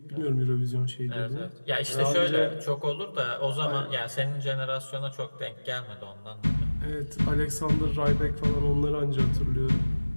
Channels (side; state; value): both; inverted; correlation -1.00